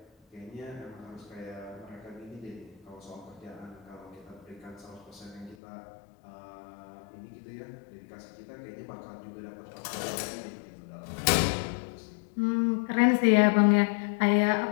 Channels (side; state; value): right; drops out; at 5.6 s